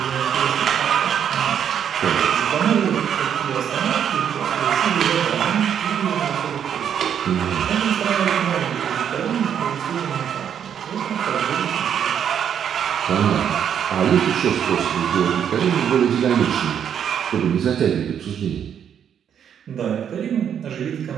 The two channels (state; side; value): quieter; left; 8.6 dB